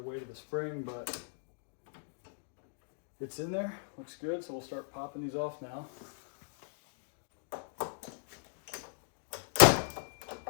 of the spring, but it's in there, looks good. So we'll start popping these off now.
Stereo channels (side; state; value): right; silent; digital silence